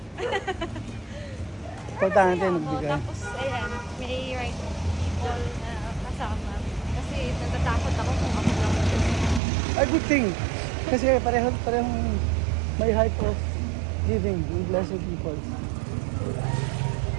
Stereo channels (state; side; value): drops out; left; at 9.4 s